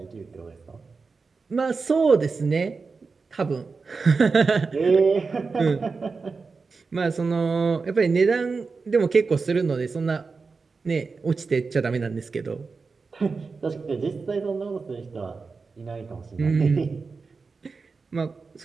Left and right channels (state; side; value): quieter; left; 4.5 dB